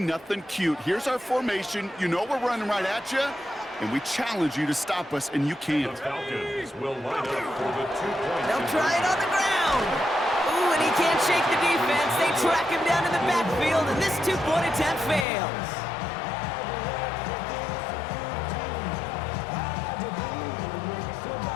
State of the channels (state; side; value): drops out; right; at 15.2 s